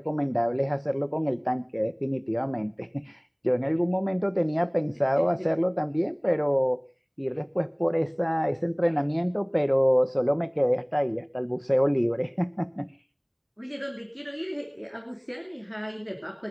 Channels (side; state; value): both; identical; correlation 1.00